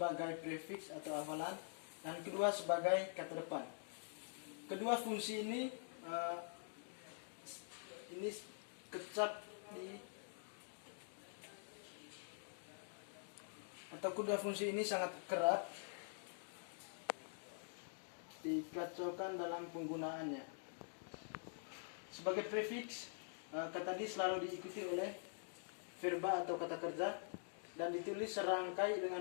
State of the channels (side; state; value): right; silent; digital silence